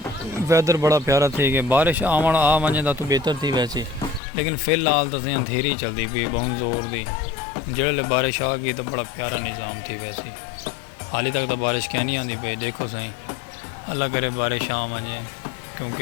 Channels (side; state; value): right; drops out; at 4.2 s